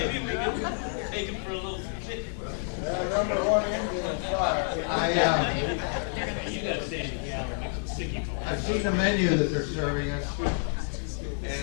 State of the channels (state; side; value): silent; right; 59 dB below the other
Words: we can take him for a little trip. Number one engine is fire. You gotta stay in the gallery, make some sticky balls. I've seen the menu that they're serving us,